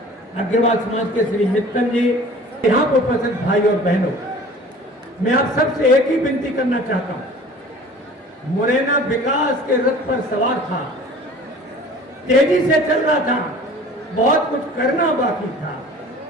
अग्रवाल समाज के श्री मित्तल जी, यहां पर उपस्थित भाई और बहनों, मैं आप सबसे एक ही विनती करना चाहता हूं। मुरैना विकास के रथ पर सवार था, तेजी से चल रहा था, बहुत कुछ करना बाकी था।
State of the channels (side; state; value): both; normal; correlation 0.45